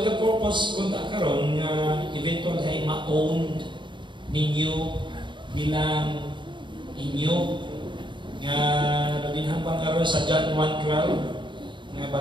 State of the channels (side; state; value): left; late; 0.23 ms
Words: the purpose kung karon eventual ay ma-own ninyo bilang inyo nga nabinhambang karon sa John 1:12 nga